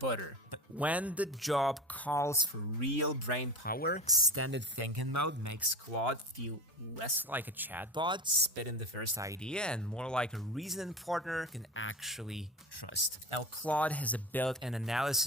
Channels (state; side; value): normal; both; correlation 0.28